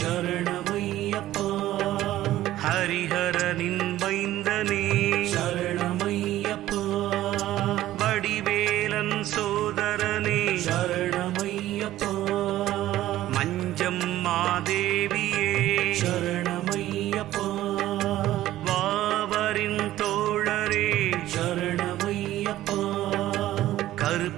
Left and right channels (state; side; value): quieter; left; 14.4 dB